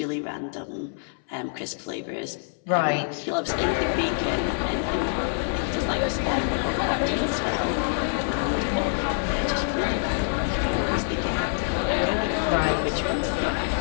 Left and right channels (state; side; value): silent; right; 61 dB below the other